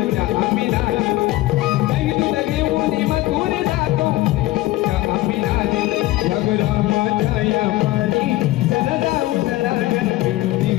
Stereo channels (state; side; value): quieter; right; 17.4 dB